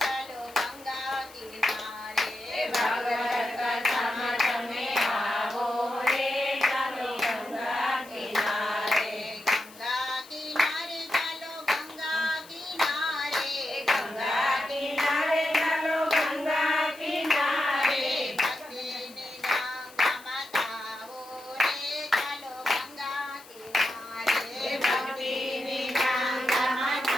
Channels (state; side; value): noise; left; hiss, 21 dB below the sound